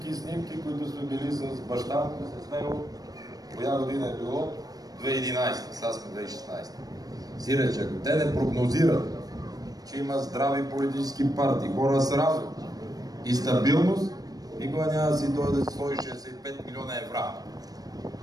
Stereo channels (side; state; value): left; late; 0.18 ms